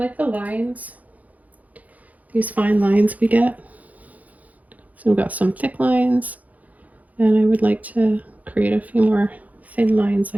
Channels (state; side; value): late; left; 0.076 ms